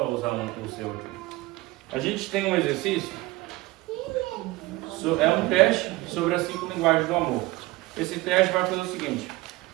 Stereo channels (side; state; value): left; quieter; 20.2 dB